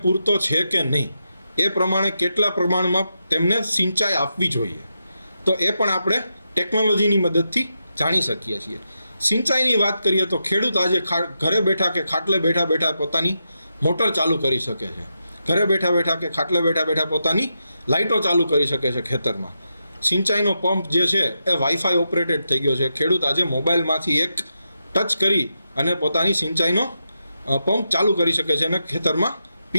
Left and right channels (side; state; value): both; inverted; correlation -0.86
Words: પૂરતો છે કે નહીં, એ પ્રમાણે કેટલા પ્રમાણમાં તેમને સિંચાઈ આપવી જોઈએ, તો એ પણ આપણે ટેકનોલોજીની મદદથી જાણી શકીએ છીએ. સિંચાઈની વાત કરીએ તો ખેડૂત આજે ઘરે બેઠા કે ખાટલે બેઠા પોતાની મોટર ચાલુ કરી શકે છે, ઘરે બેઠા કે ખાટલે બેઠા પોતાની લાઇટો ચાલુ કરી શકે છે ખેતરમાં. સિંચાઈનો પંપ જે છે એ વાઈફાઈ ઓપરેટેડ થઈ ગયો છે. ખેડૂત આજે મોબાઈલમાંથી એક ટચ કરી અને પોતાની સિંચાઈનો પંપ ચાલુ કરી શકે છે અને ખેતરમાં